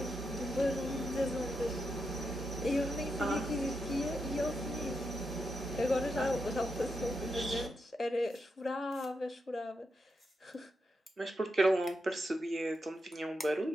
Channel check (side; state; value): both; normal; correlation 0.85